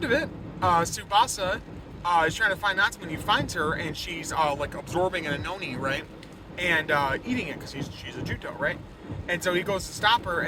of it, Tsubasa is trying to find Natsume, and he finds her, and she's like absorbing an Anoni, right? And eating it because she's a Juto, right? And so he goes to stop her,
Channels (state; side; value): identical; both; correlation 1.00